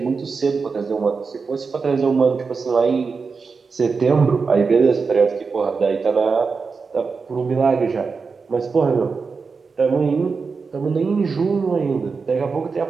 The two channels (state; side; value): quieter; left; 4.9 dB